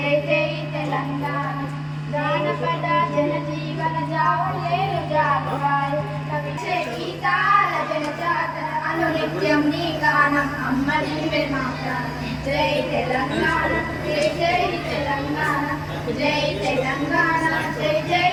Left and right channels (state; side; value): identical; both; correlation 1.00